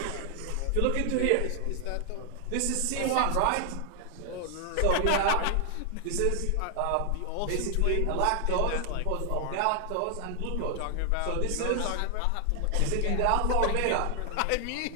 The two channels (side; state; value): both; different; correlation 0.00